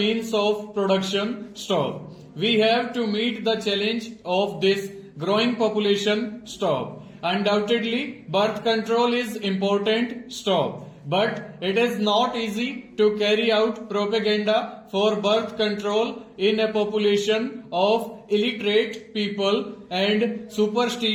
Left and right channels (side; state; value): both; identical; correlation 1.00